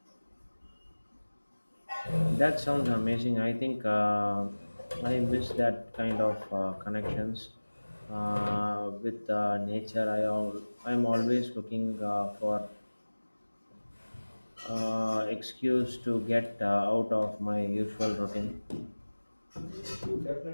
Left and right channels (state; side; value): inverted; both; correlation -1.00